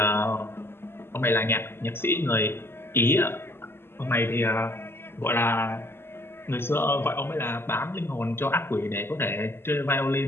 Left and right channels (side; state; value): right; late; 0.11 ms